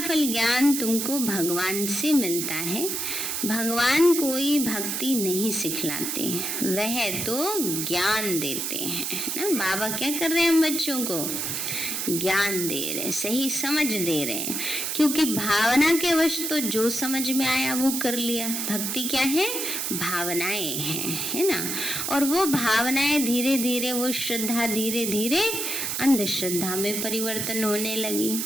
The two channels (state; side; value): noise; right; hiss, 2 dB below the sound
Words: ज्ञान तुमको भगवान से मिलता है। भगवान कोई भक्ति नहीं सिखलाते, वह तो ज्ञान देते हैं ना। बाबा क्या कर रहे हैं हम बच्चों को? ज्ञान दे रहे हैं, सही समझ दे रहे हैं, क्योंकि भावना के वश तो जो समझ में आया वो कर लिया। भक्ति क्या है? भावनाएं हैं, है ना। और वो भावनाएं धीरे धीरे, वो श्रद्धा धीरे धीरे अंधश्रद्धा में परिवर्तन होने लगी,